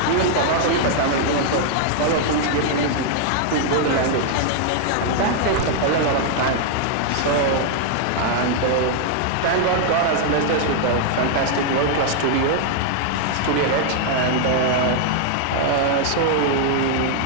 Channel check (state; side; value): different; both; correlation 0.00